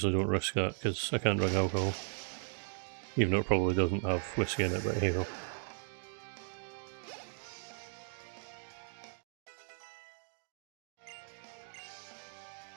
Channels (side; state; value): left; silent; 53 dB below the other